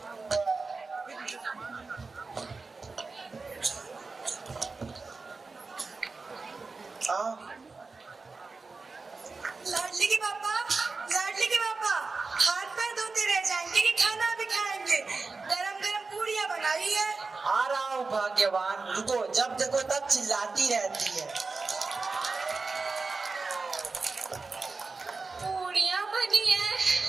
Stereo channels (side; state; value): left; quieter; 4.1 dB